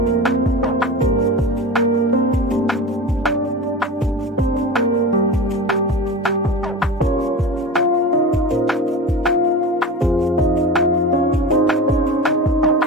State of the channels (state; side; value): normal; both; correlation 0.30